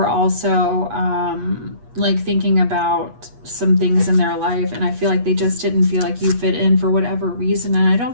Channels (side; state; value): left; late; 8.3 ms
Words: also like thinking about some things in their life, and I feel like they just didn't feel like you fit in for whatever reason. And I